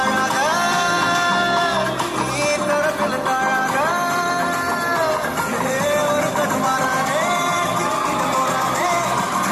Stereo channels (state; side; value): identical; both; correlation 1.00